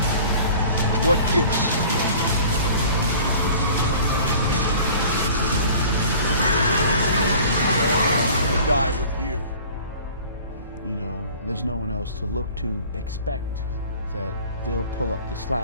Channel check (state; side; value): inverted; both; correlation -0.45